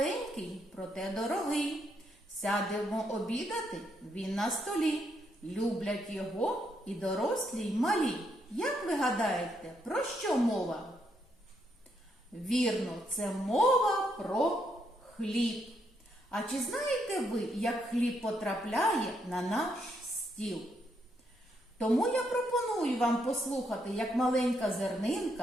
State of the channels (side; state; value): both; normal; correlation 0.76